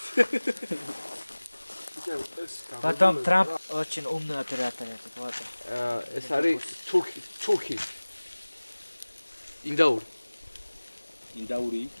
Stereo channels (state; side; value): inverted; both; correlation -1.00